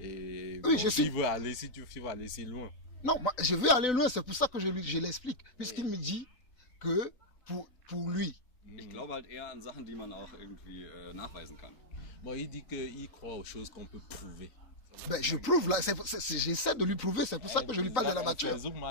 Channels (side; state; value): right; late; 3.9 ms